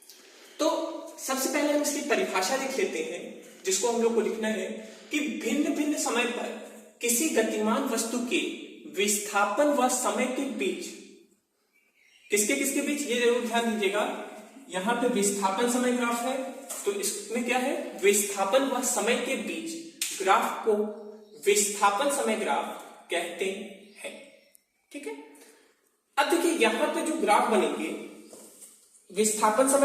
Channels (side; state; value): both; identical; correlation 1.00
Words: तो सबसे पहले हम इसकी परिभाषा लिख लेते हैं, जिसको हम लोग को लिखना है कि भिन्न भिन्न समय पर किसी गतिमान वस्तु के विस्थापन व समय के बीच, किसके किसके बीच, ये जरूर ध्यान दीजिएगा। यहां पे विस्थापन समय ग्राफ है, तो इसमें क्या है? विस्थापन व समय के बीच ग्राफ को विस्थापन समय ग्राफ कहते हैं। ठीक है, अब देखिए यहां पे जो ग्राफ बनेंगे, विस्थापन